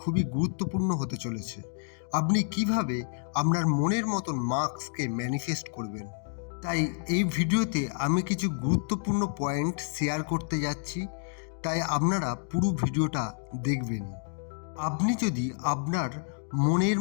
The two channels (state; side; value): silent; right; 58 dB below the other